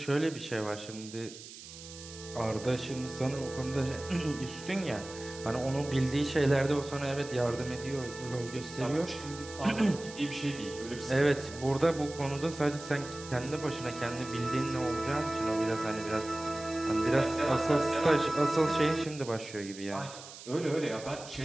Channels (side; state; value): right; noise; hiss, 15 dB below the sound